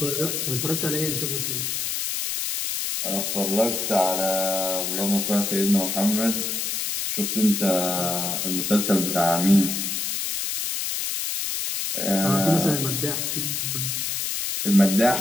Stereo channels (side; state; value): left; noise; hiss, 1 dB below the sound